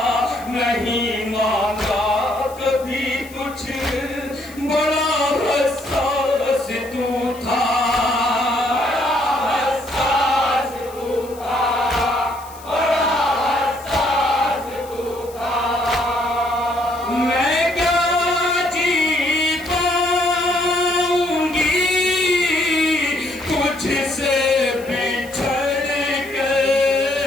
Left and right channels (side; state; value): left; noise; hiss, 21 dB below the sound